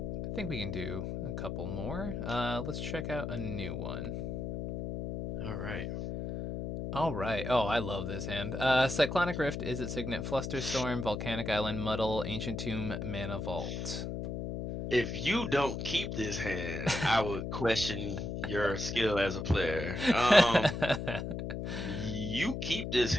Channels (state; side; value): noise; left; hum, 4 dB below the sound